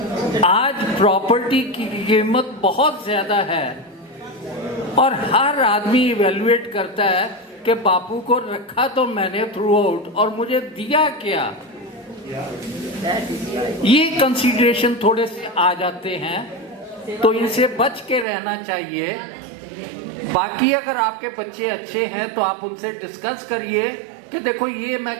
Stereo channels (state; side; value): drops out; left; at 18.2 s